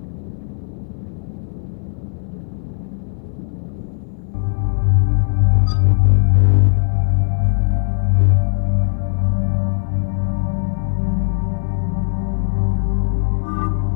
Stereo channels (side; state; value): right; silent; 60 dB below the other